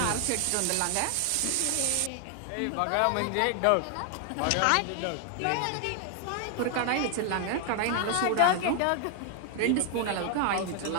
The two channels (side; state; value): both; different; correlation 0.00